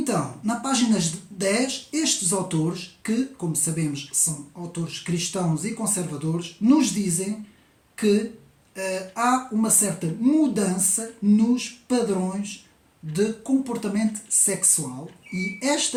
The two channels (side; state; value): both; identical; correlation 1.00